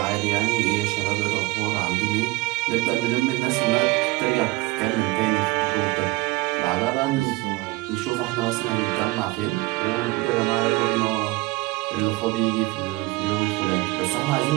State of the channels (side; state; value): left; quieter; 21.6 dB